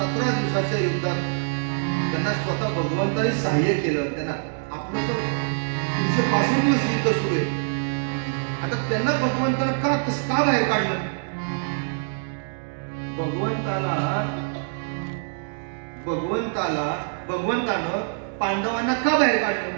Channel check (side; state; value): left; silent; digital silence